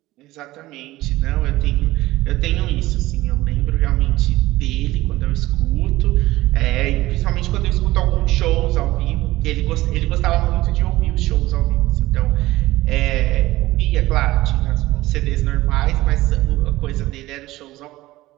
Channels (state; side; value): quieter; left; 17.6 dB